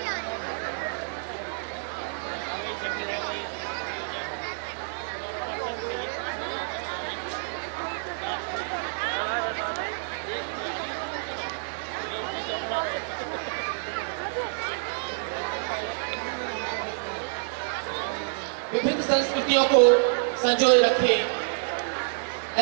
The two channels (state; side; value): silent; left; digital silence